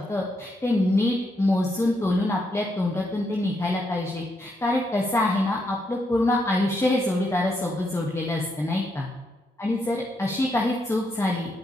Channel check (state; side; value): normal; both; correlation 0.79